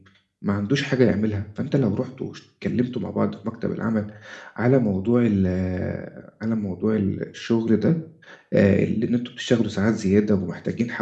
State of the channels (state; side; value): identical; both; correlation 1.00